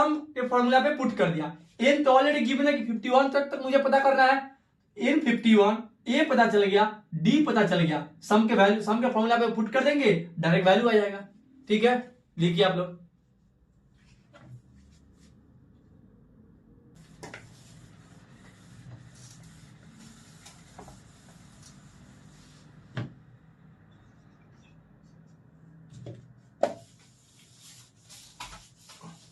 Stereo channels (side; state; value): both; identical; correlation 1.00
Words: के फॉर्मूला पे पुट कर दिया। एन तो ऑलरेडी गिवन है कि 51 तक मुझे पता करना है, एन 51, ए पता चल गया, डी पता चल गया, सम के वैल्यू, सम के फॉर्मूला पे पुट कर देंगे, डायरेक्ट वैल्यू आ जाएगा। ठीक है, लिखिए आप लोग।